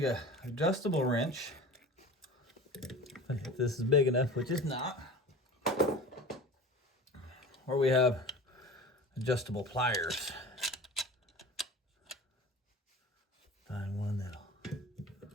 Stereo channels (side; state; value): both; normal; correlation 0.37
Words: a adjustable wrench, if this is big enough, which is not, or we have adjustable pliers. Find one that'll